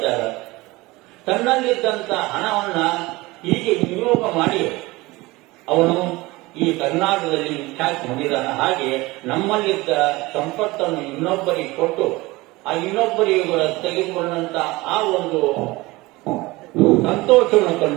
ಇದ್ದಾರೆ. ತನ್ನಲ್ಲಿದ್ದಂತ ಹಣವನ್ನ ಹೀಗೆ ವಿನಿಯೋಗ ಮಾಡಿ ಅವನು ಈ ಕರ್ನಾಟಕದಲ್ಲಿ ವಿಖ್ಯಾತಿ ಹೊಂದಿದ್ದಾನೆ. ಹಾಗೆ ನಮ್ಮಲ್ಲಿದ್ದ ಸಂಪತ್ತನ್ನು ಇನ್ನೊಬ್ಬರಿಗೆ ಕೊಟ್ಟು ಆ ಇನ್ನೊಬ್ಬರಿಗೆ ತೆಗೆದುಕೊಂಡಂತ ಆ ಒಂದು ಸಂತೋಷವನ್ನು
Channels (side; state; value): left; quieter; 21.3 dB